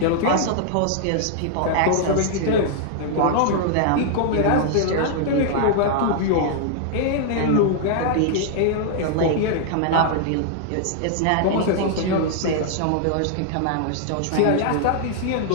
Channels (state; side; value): different; both; correlation -0.01